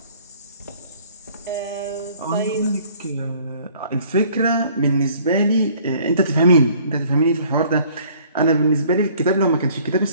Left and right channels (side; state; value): both; inverted; correlation -0.57